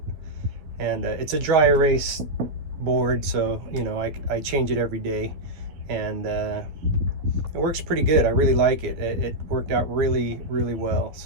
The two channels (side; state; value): left; late; 12 ms